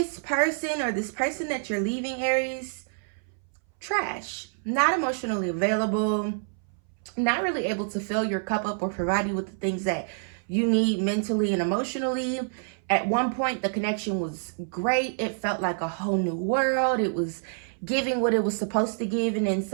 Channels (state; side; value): silent; left; 60 dB below the other